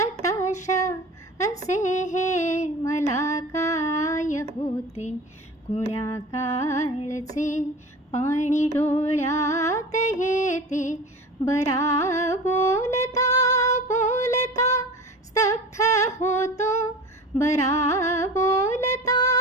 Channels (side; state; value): both; normal; correlation 0.36